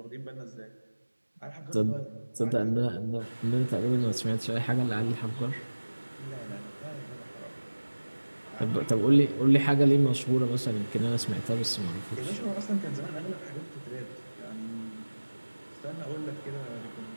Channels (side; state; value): both; inverted; correlation -1.00